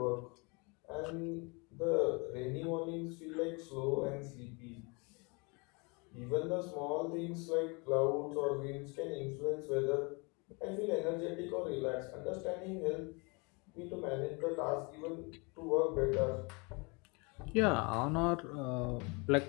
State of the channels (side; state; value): right; quieter; 30.4 dB